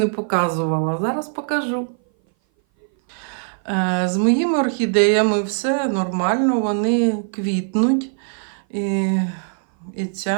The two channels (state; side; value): silent; left; 58 dB below the other